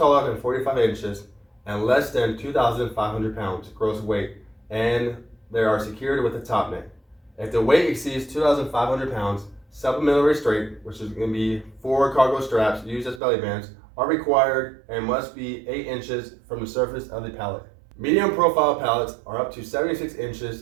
than 45 inches and less than 2,500 pounds gross weight, and they are secured with a top net. If the weight exceeds 2,500 pounds, supplemental restraint, which is going to be 4 cargo straps used as belly bands, are required and must be 8 inches from the surface of the pallet. Medium profile pallets are up to 76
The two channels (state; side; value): drops out; left; at 13.2 s